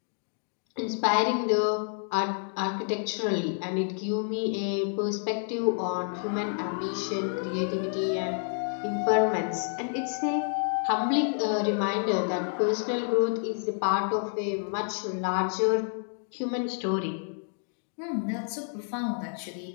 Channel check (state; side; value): silent; right; 59 dB below the other